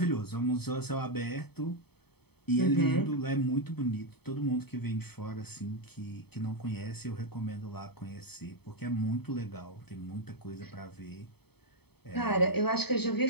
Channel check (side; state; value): right; late; 0.97 ms